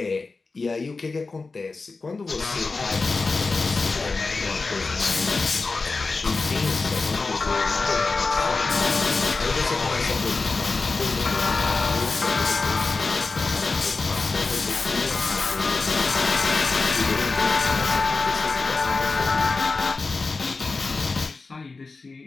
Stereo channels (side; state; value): right; quieter; 3.9 dB